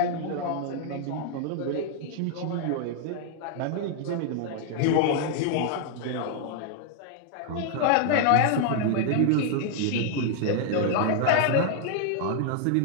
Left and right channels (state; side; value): different; both; correlation 0.00